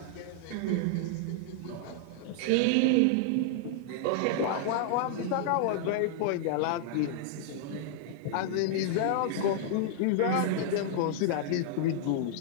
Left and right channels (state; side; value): different; both; correlation -0.01